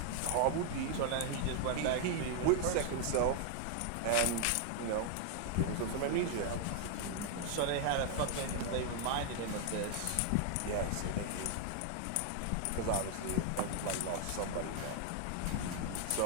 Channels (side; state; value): both; different; correlation 0.00